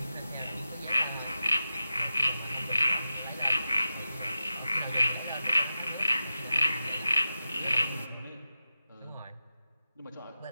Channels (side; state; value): both; inverted; correlation -0.92